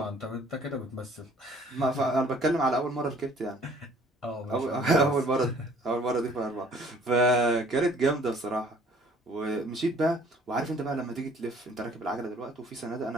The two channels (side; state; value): both; normal; correlation 0.56